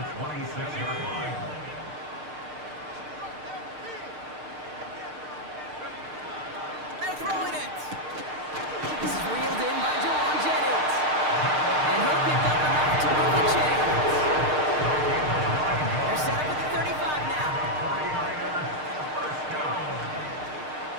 26-yard line. They're throwing it. This is reeled in by Jawan Jennings. And he'll pick up enough to move the chains. They're set up at the 35 now. 49ers, first down.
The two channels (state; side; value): late; left; 6.6 ms